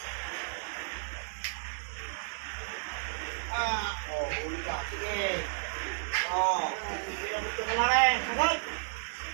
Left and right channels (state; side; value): silent; left; digital silence